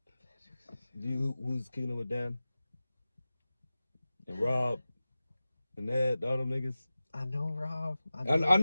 mean? Who's kicking it with Dan? And Rob. And Ed, all them niggas. I know Rob. I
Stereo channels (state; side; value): inverted; both; correlation -0.96